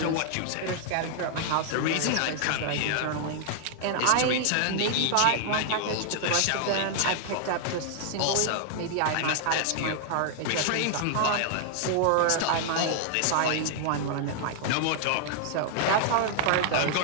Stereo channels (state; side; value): different; both; correlation 0.00